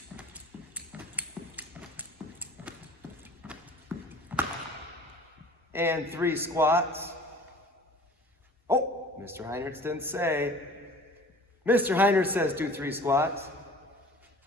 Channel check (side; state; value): both; normal; correlation 0.45